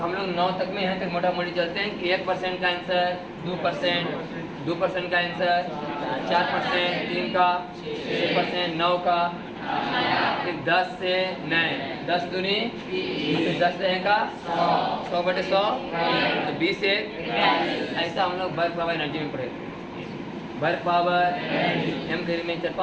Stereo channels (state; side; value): identical; both; correlation 1.00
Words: हम लोग 9 तक में यहाँ तक मोटा मोटी चलते हैं कि 1% का आंसर 2%, 2% का आंसर 4%, 3 का 6%, 9 का, फिर 10 से 9, 10 दूनी, फिर 10 रहेगा 100 बटे 100 तो 20 से। ऐसा हम लोग वर्क पावर एनर्जी में पढ़े। वर्क पावर एम थ्योरी में